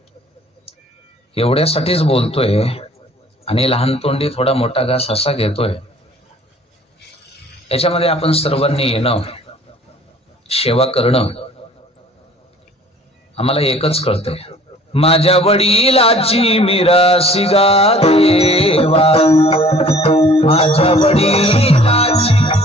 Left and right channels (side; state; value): both; normal; correlation 0.52